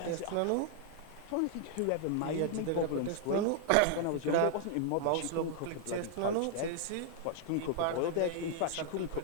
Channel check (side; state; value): both; different; correlation 0.00